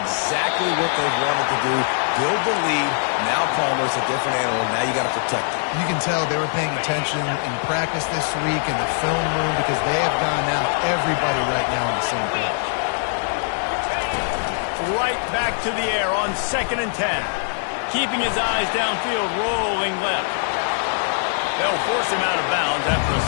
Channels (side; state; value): right; silent; digital silence